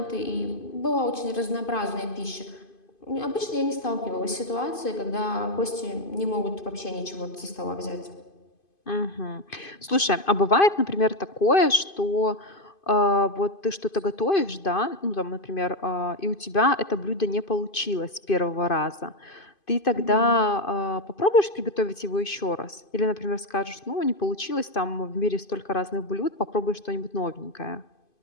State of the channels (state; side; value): late; right; 2.5 ms